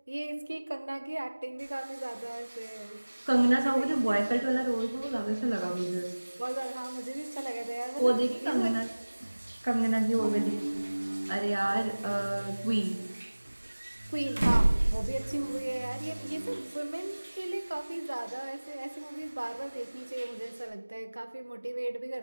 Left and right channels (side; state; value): both; inverted; correlation -1.00